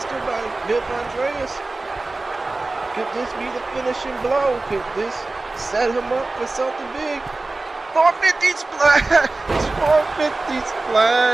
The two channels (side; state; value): left; quieter; 3.3 dB